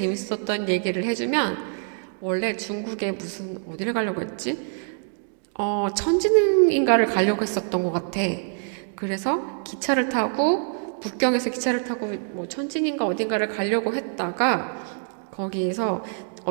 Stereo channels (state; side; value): silent; left; digital silence